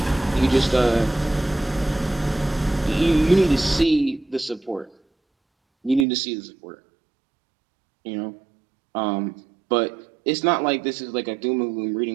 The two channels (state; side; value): drops out; left; at 6.1 s